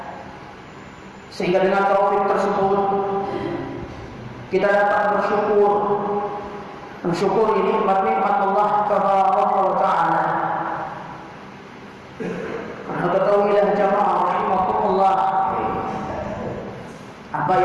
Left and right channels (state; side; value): identical; both; correlation 1.00